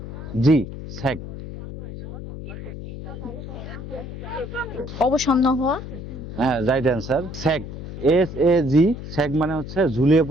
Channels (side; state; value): left; noise; hum, 10 dB below the sound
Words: স্যাগ। অবসন্ন হওয়া হ্যাঁ, রাইট অ্যান্সার। স্যাগ, SAG, স্যাগ মানে হচ্ছে ঝুলিয়ে